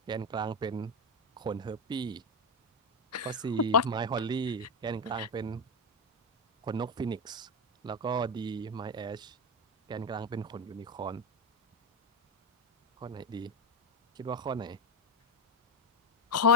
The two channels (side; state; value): both; normal; correlation 0.09